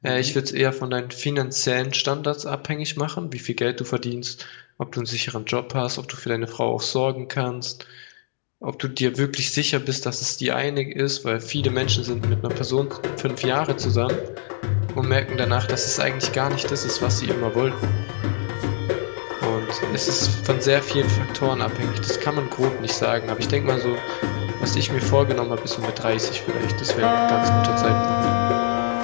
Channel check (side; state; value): right; silent; digital silence